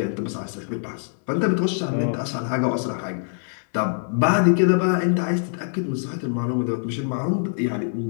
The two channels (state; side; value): silent; right; digital silence